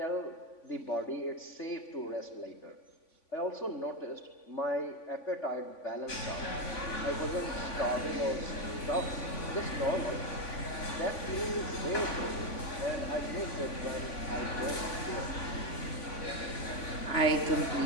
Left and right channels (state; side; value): late; right; 3.5 ms